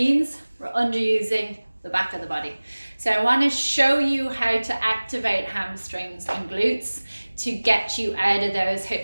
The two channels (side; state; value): both; inverted; correlation -1.00